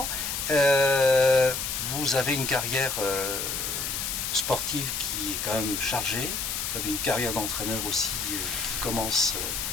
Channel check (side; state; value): left; noise; hiss, 2 dB below the sound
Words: vous avez une carrière sportive qui est quand même chargée. Vous avez une carrière d'entraîneur aussi qui commence